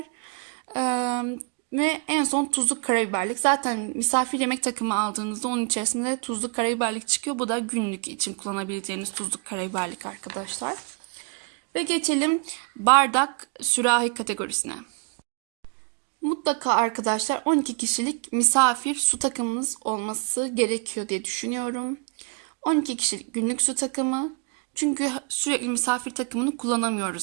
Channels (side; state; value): left; quieter; 33.8 dB